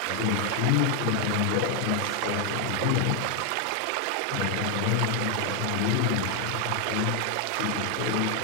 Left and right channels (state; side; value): different; both; correlation 0.00